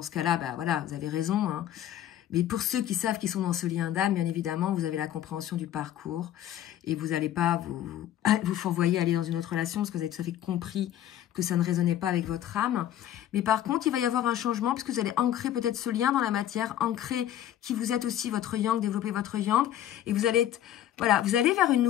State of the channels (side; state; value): right; quieter; 11.7 dB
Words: ce cas-là, bah voilà, vous avez raison, hein. Mais pour ceux qui savent qu'ils sont dans ce lien d'âme, bien évidemment, vous avez la compréhension du parcours et vous n'allez pas vous fourvoyer aller dans une autre relation parce que vous avez tout à fait compris que ça ne résonnait pas avec votre âme. Mais par contre, il va y avoir un changement puisque vous allez ancrer peut-être ce lien dans la matière, ancrer qui vous êtes aussi votre yang, développer votre yang et vous allez être, voilà, vous allez vers une